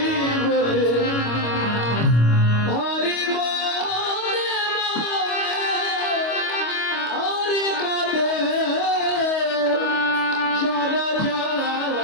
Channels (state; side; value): late; right; 25 ms